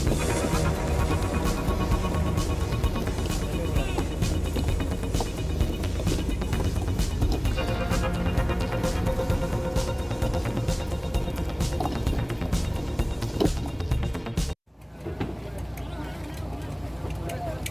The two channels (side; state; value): both; identical; correlation 1.00